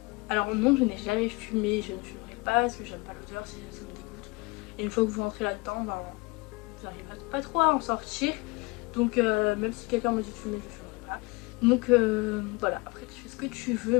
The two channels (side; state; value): right; quieter; 25.9 dB